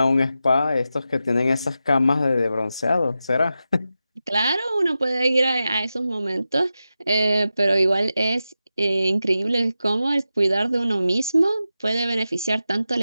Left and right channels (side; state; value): both; inverted; correlation -0.91